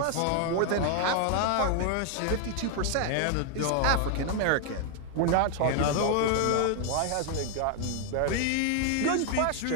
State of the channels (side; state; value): both; different; correlation 0.00